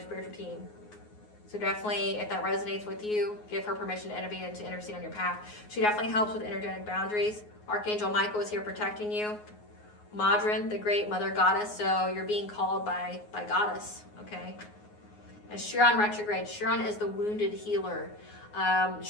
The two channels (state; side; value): late; right; 9.5 ms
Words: team. So definitely, if that resonates with you, give her permission to intervene and to intercede on your path. She definitely helps with energetic boundaries. Archangel Michael is here protecting you. Madrin, the great mother goddess. So you're being called by goddess. Okay. And Chiron retrograde. Chiron is the wounded healer.